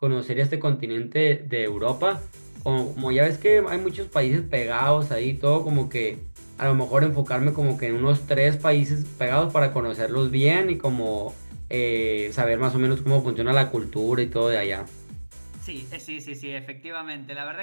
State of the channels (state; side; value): inverted; both; correlation -1.00